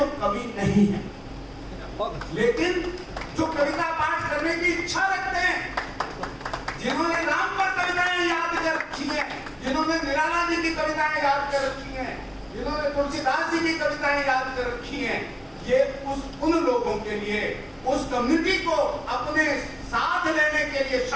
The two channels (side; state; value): both; identical; correlation 1.00